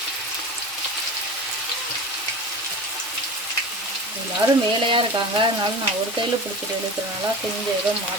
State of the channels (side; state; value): both; normal; correlation 0.32